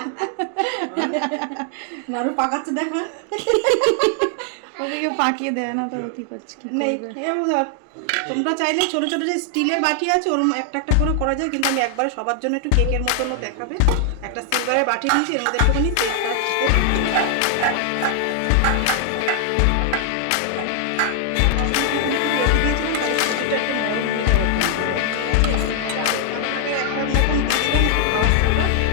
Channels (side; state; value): both; different; correlation 0.00